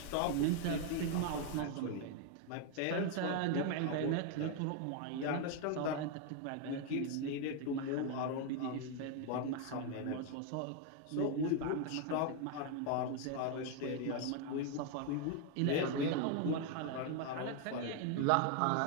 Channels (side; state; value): both; different; correlation 0.01